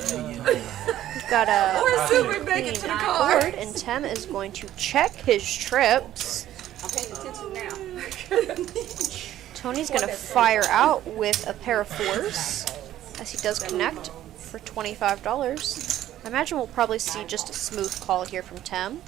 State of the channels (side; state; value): left; quieter; 12.8 dB